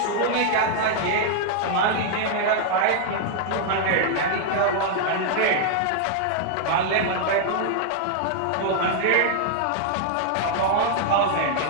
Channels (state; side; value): different; both; correlation -0.01